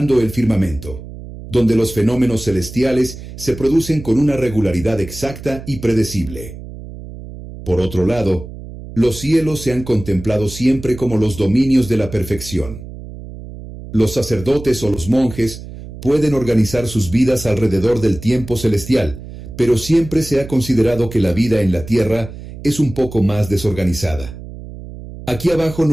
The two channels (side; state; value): right; noise; hum, 13 dB below the sound